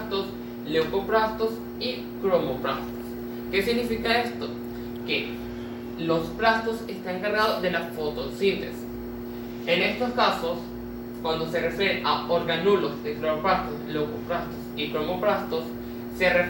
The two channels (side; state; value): both; identical; correlation 1.00